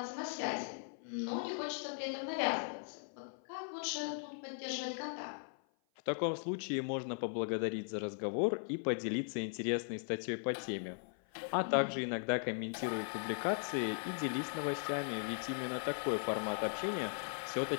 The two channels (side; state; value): right; silent; 52 dB below the other